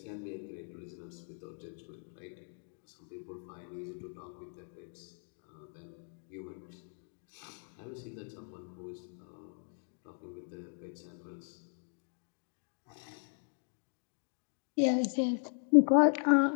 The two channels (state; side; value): silent; right; 53 dB below the other